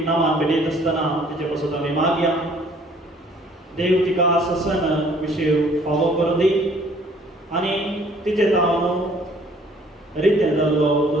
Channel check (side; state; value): both; normal; correlation 0.58